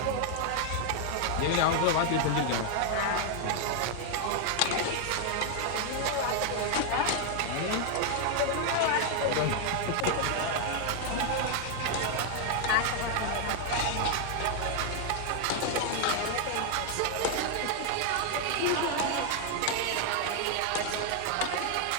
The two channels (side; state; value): both; different; correlation 0.00